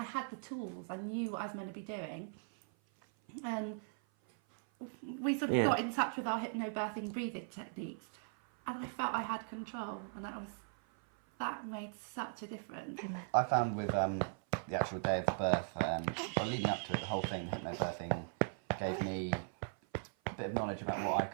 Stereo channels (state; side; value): silent; left; 52 dB below the other